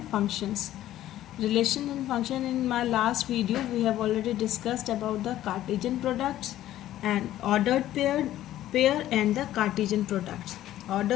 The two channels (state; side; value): quieter; right; 13.4 dB